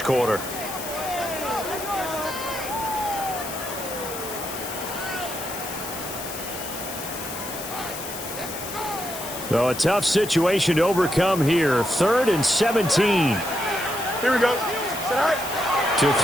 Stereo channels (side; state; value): left; noise; hiss, 9 dB below the sound